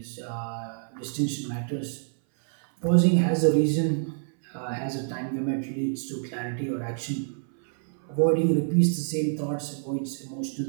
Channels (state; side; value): silent; left; 60 dB below the other